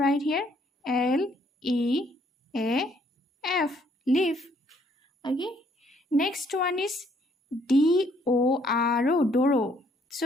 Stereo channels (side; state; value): both; normal; correlation 0.66